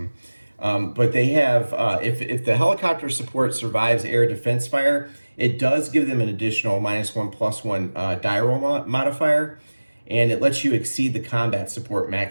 But they have, if the helicopter support survives air defense fire, it does give them an additional -1/+1 die roll modifier, and it lets you exceed the combat support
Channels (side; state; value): both; inverted; correlation -1.00